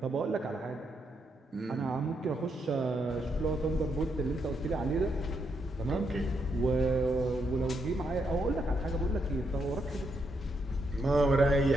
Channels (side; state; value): both; normal; correlation 0.79